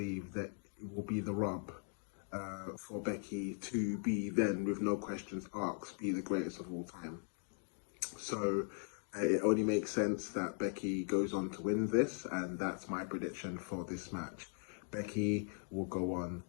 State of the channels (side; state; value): right; silent; 51 dB below the other